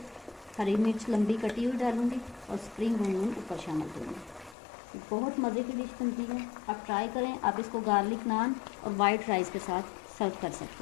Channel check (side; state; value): right; drops out; at 4.5 s